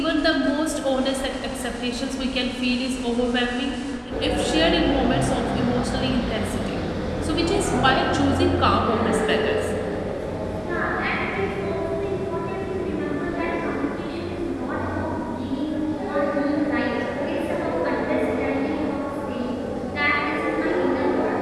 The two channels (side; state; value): both; identical; correlation 1.00